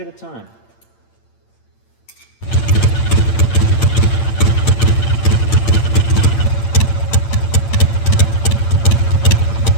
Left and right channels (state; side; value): late; right; 8.8 ms